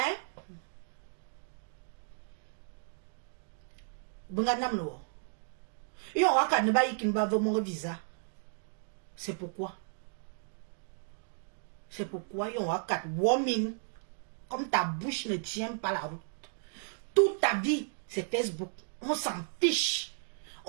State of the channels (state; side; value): silent; left; digital silence